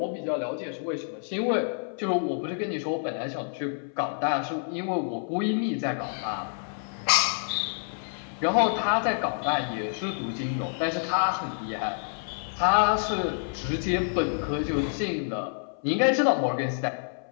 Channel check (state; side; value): silent; right; 59 dB below the other